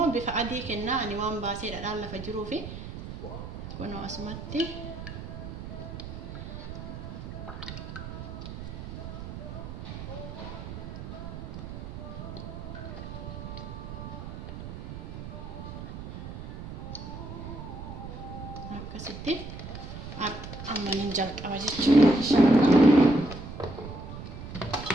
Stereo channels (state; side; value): noise; right; rumble, 9 dB below the sound